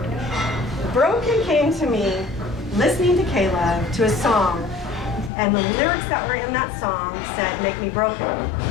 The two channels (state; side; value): drops out; right; at 5.3 s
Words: Broken came to me listening to Caleb to a song, and the lyrics that were in that song said, "Make me broken."